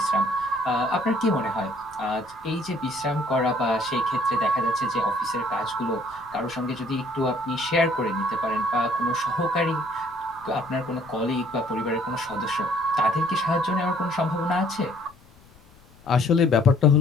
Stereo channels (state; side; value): noise; left; rumble, 27 dB below the sound